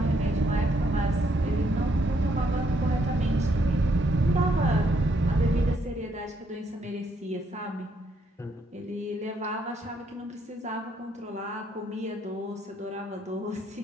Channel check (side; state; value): both; normal; correlation 0.73